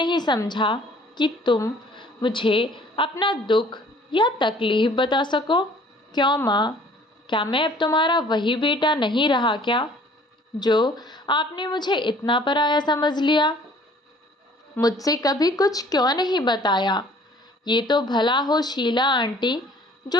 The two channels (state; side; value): normal; both; correlation 0.54